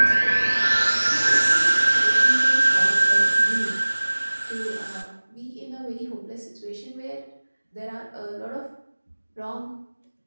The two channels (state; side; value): inverted; both; correlation -1.00